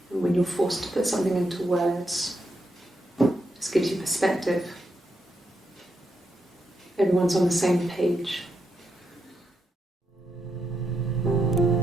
And when you're forced to put something into words, it just gives you perspective. Everyone's on the same page.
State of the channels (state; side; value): normal; both; correlation 0.83